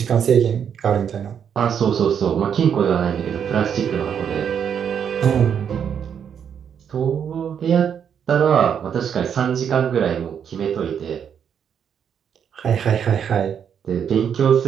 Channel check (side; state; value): left; quieter; 8.0 dB